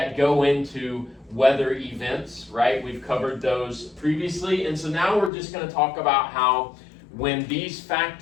go into weather events, right? We've covered those previously, and so now we're just going to talk about how when these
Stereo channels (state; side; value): drops out; right; at 5.3 s